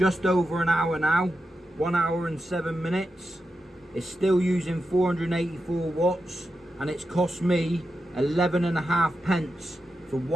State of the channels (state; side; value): normal; both; correlation 0.88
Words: over an hour now, 1 hour and 7 minutes. It's still using 484 watts, and it's cost me 11.5 pence for